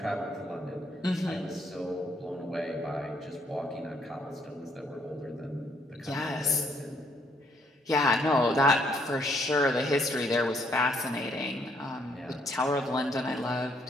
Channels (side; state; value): both; normal; correlation 0.69